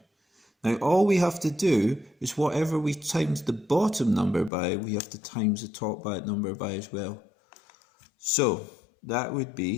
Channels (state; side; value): drops out; right; at 4.5 s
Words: Now all we have to do is whatever we times the bottom number by, we have to times the top number by as well. So that would